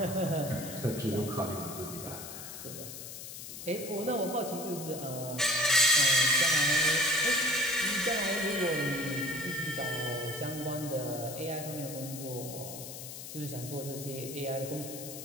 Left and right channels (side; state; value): left; noise; hiss, 10 dB below the sound